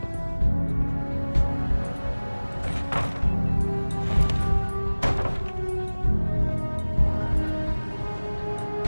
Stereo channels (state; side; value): inverted; both; correlation -1.00